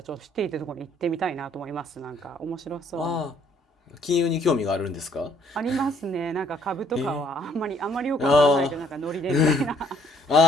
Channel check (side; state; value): both; normal; correlation 0.64